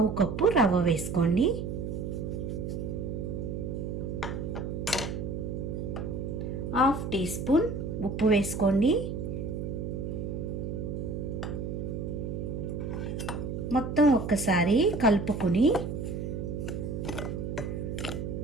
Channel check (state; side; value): noise; right; hum, 4 dB below the sound